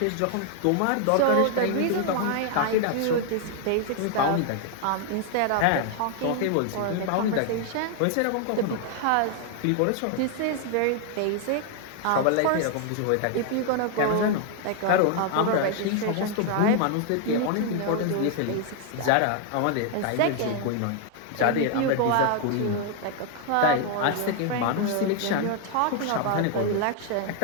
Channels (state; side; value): different; both; correlation 0.00